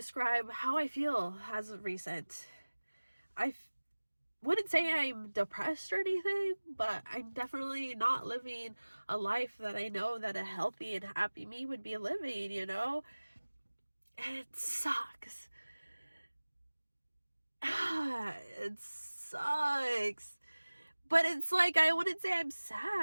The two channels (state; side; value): inverted; both; correlation -1.00